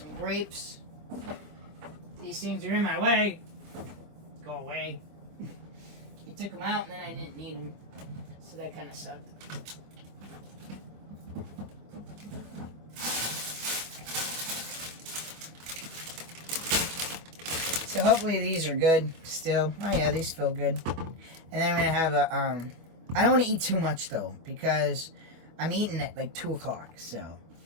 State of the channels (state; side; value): late; left; 25 ms